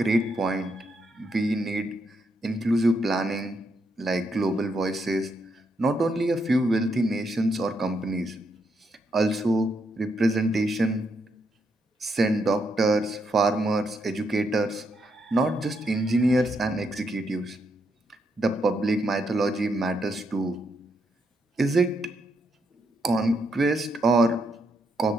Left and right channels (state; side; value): normal; both; correlation 0.79